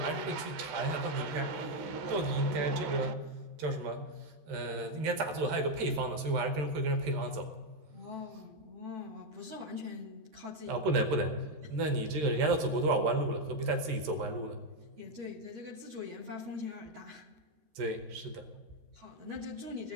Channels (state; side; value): late; left; 13 ms